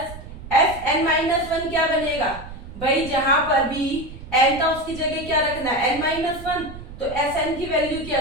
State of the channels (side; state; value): right; noise; rumble, 14 dB below the sound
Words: Sn minus 1 क्या बनेगा भाई, जहां पर भी n था उसकी जगह क्या रखना है n माइनस 1। तो Sn की वैल्यू